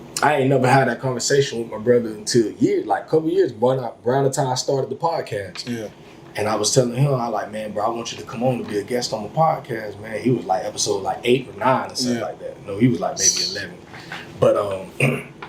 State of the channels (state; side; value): identical; both; correlation 1.00